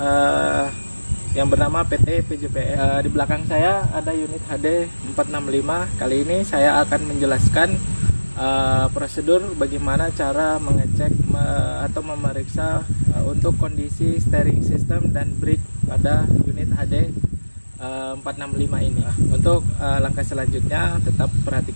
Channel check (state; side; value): inverted; both; correlation -1.00